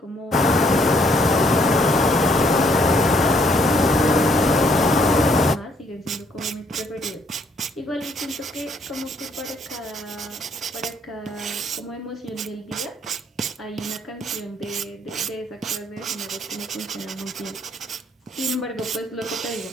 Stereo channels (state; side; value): normal; both; correlation 0.67